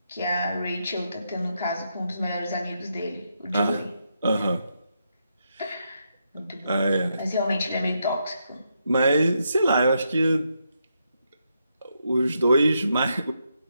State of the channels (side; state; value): both; inverted; correlation -0.81